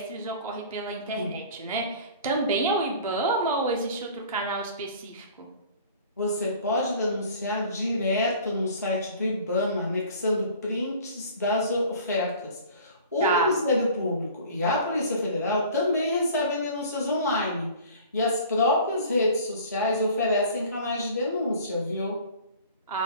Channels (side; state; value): both; inverted; correlation -0.46